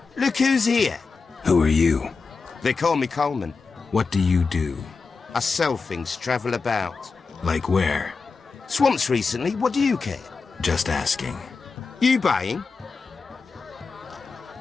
Look who's here. Who are you? They call me Coleman. What do you do? I sell things, travel about. Like where? Swamps recently, what do you care? Just asking. You buying?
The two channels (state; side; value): quieter; right; 4.7 dB